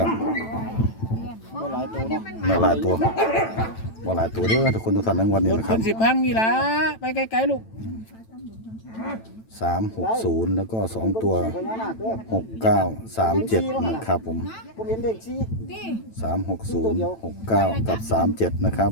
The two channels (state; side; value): late; right; 9.0 ms